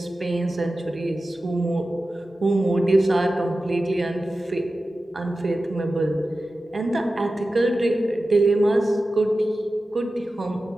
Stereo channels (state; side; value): normal; both; correlation 0.94